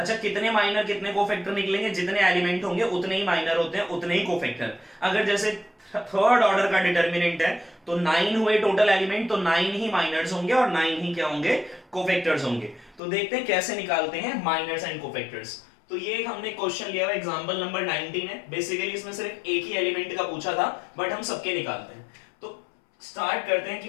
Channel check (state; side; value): drops out; right; at 13.0 s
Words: कितने माइनर कितने कोफैक्टर निकलेंगे? जितने एलिमेंट होंगे उतने ही माइनर होते हैं, उतने ही कोफैक्टर। अगर जैसे थर्ड ऑर्डर का डिटरमिनेंट है तो 9 हुए टोटल एलिमेंट, तो 9 ही माइनर्स होंगे और 9 ही क्या होंगे? कोफैक्टर्स होंगे। तो देखते हैं कैसे निकालते हैं माइनर्स एंड कोफैक्टर्स। तो ये हमने क्वेश्चन लिया हुआ एग्जांपल नंबर 19 है। बेसिकली इसमें सिर्फ एक ही एलिमेंट का पूछा था, बट हम सबके निकालते हैं। तो स्टार्ट करते हैं